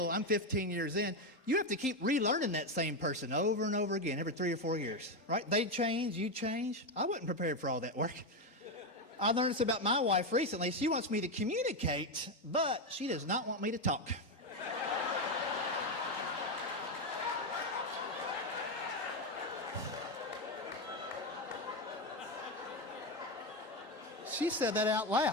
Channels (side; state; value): right; late; 3.8 ms